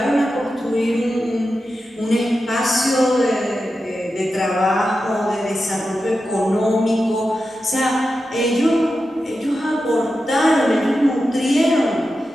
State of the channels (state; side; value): normal; both; correlation 0.91